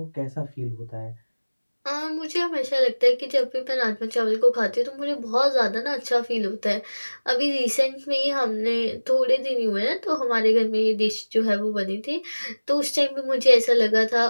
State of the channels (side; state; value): both; inverted; correlation -1.00